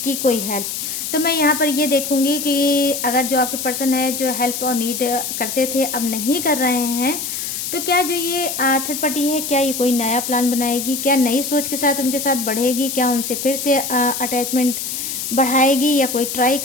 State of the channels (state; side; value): noise; left; hiss, 4 dB below the sound